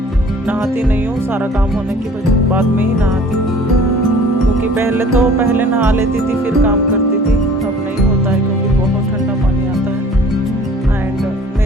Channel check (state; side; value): normal; both; correlation 0.50